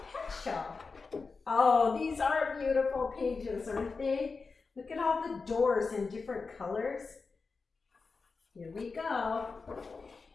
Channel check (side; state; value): right; quieter; 4.5 dB